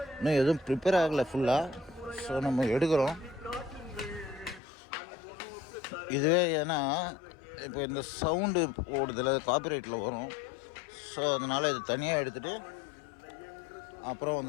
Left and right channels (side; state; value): right; drops out; at 4.6 s